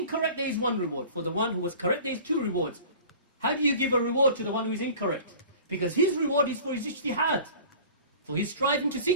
there is 1 reward. For the one who was correct there is 2 rewards. How do you give a reward to the one who is incorrect? Because his reward is for his ijtihad, for his striving to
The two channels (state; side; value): inverted; both; correlation -0.43